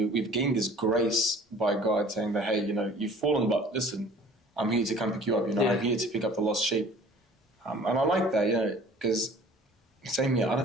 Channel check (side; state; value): both; normal; correlation 0.49